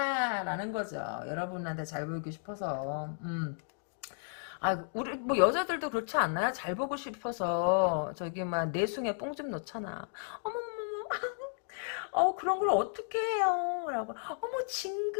라는 거죠. 여러분한테 잘 보이고 싶어서. 우리 뭐 여자들도 그렇지 않나요? 잘 보고 싶어서 막 내숭에 뽕 좀 넣잖아. 그런 걸 어떻게 해요? 라고,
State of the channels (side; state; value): right; silent; digital silence